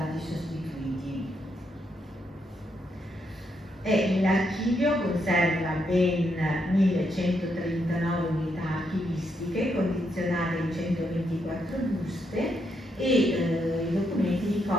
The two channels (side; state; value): both; normal; correlation 0.79